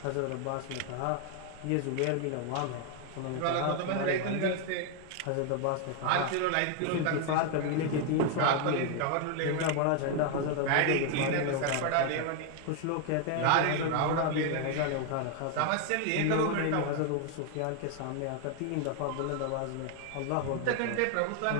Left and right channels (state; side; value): different; both; correlation 0.00